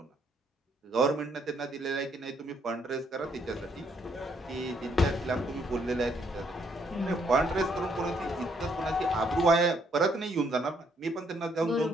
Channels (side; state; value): both; normal; correlation 0.70